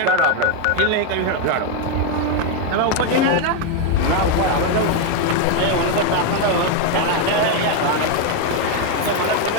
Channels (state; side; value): different; both; correlation 0.01